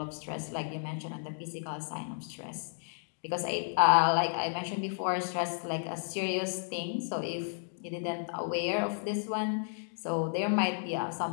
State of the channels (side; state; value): right; silent; digital silence